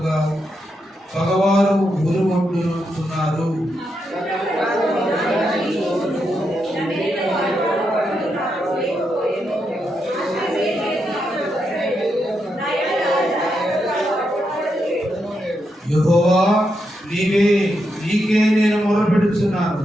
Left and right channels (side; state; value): both; normal; correlation 0.83